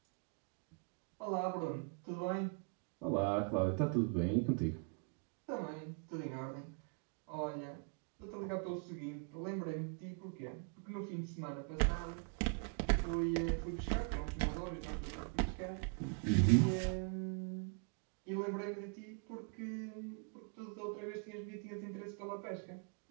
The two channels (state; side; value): quieter; left; 37.6 dB